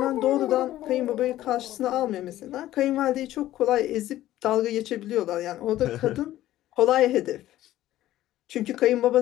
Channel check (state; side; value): quieter; right; 14.2 dB